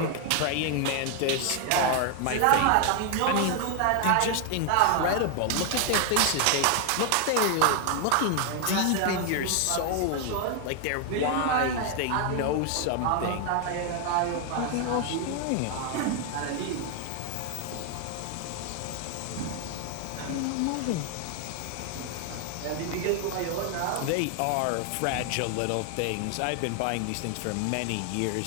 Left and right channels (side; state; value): both; different; correlation 0.00